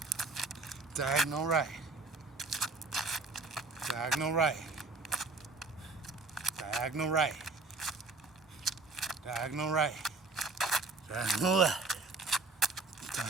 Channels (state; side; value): quieter; left; 3.7 dB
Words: Diagonal right. Diagonal right. Diagonal right. Diagonal right. Diagonal left.